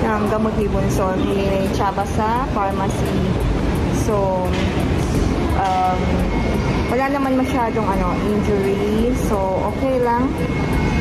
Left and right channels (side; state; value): both; identical; correlation 1.00